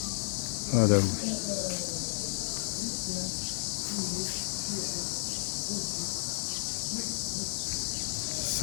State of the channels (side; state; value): right; silent; digital silence